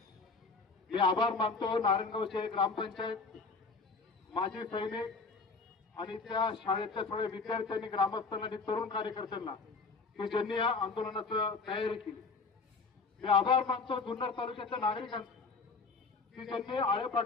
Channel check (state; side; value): quieter; right; 4.2 dB